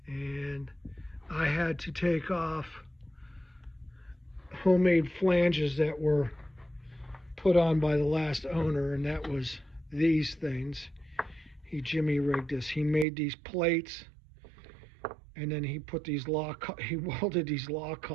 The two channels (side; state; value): left; drops out; at 13.1 s